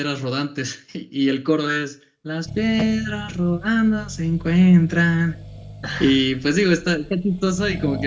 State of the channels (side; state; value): both; identical; correlation 1.00